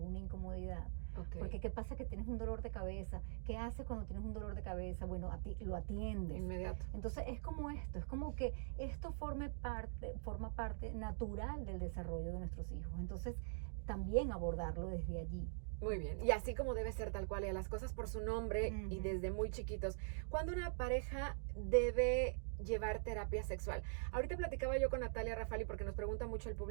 incomodidad. Porque qué pasa que tienes un dolor de cabeza, qué haces cuando tienes un dolor de cabeza, bueno, lo atiendes. Inmediato. Entonces es como esto, es como que esto forma parte natural del desarrollo de nuestros hijos. Entonces también abordarlo desde allí. Muy bien, y así como debe ser tal cual, y a las cosas por su nombre y desde muy chiquitos. ¿Cuándo una pareja debe llevar terapia sexual. Ahorita platicaba yo con Natalia Rafali porque nos pregunta mucho el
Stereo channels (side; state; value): left; silent; digital silence